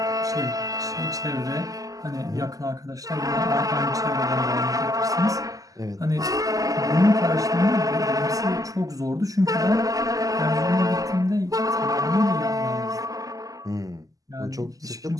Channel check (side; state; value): left; late; 0.17 ms